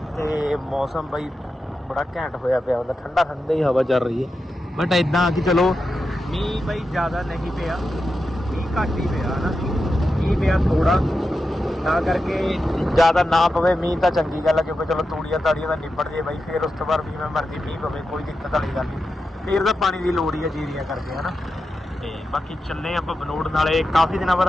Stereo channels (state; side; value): normal; both; correlation 0.89